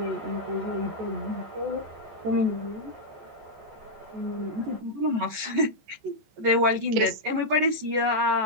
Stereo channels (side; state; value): left; late; 14 ms